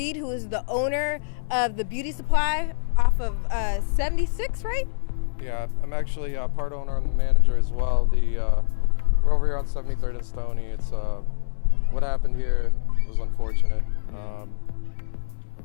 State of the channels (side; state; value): right; silent; 62 dB below the other